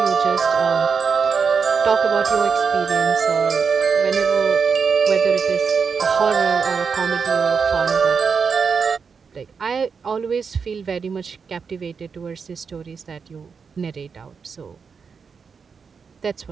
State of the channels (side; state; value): left; quieter; 5.8 dB